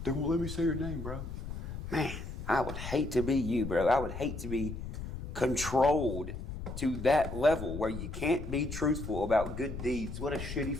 They won't let me say your name, bro. Man, I would hate to be you, bro. I would hate to be controlled to that level where you can't be truthful about good deeds. What a shitty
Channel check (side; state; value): left; noise; rumble, 7 dB below the sound